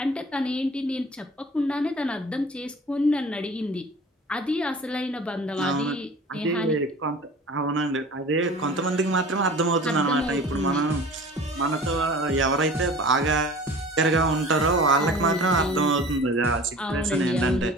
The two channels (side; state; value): both; normal; correlation 0.42